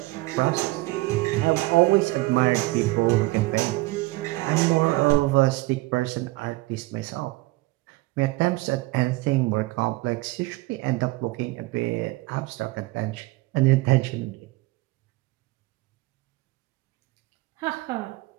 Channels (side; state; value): left; quieter; 21.1 dB